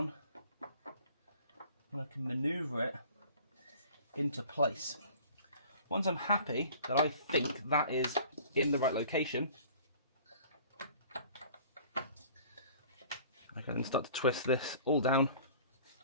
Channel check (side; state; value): both; inverted; correlation -0.48